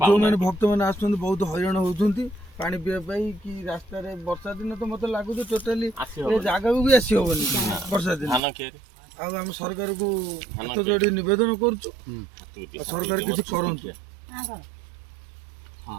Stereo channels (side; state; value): left; drops out; at 8.4 s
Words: ଯେଉଁମାନେ ଭକ୍ତମାନେ ଆସୁଛନ୍ତି ବହୁତ ହଇରାଣ ହଉଛନ୍ତି ପାଣି ପିଇବା ପାଇଁ, କି ରାସ୍ତାରେ ବର୍ଷା ଦିନ ତ ମତେ ଲାଗୁଛି ଟୋଟାଲି ଏ ଜାଗାକୁ ବି ଆସି ହବନି ବର୍ଷା ଦିନ। ଆଉ ଆମେ ସରକାରକୁ ହାତ ଯୋଡ଼ି ନିବେଦନ କରୁଛୁ, ସରକାର କିଛି କରନ୍ତୁ।